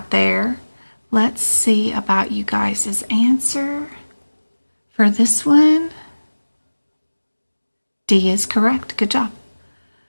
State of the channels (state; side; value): inverted; both; correlation -1.00